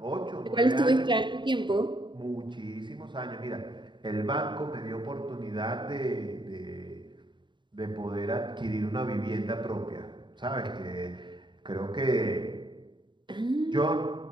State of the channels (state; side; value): late; left; 0.23 ms